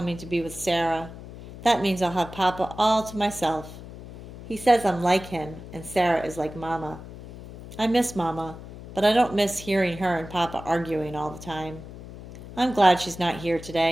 to be with Sarah. That means I'll have Papa all to myself. He says I'm like him, and Sarah is like Mama. I miss Mama, but I don't miss hearing her and Papa arguing all the time. I'm glad she's not here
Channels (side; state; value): left; noise; hum, 14 dB below the sound